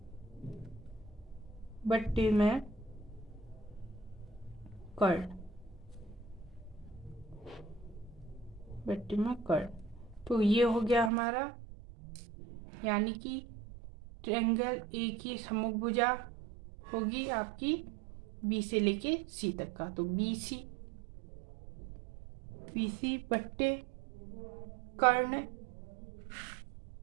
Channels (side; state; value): left; drops out; at 11.1 s